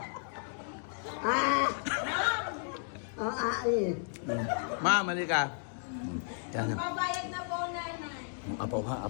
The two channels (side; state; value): right; silent; digital silence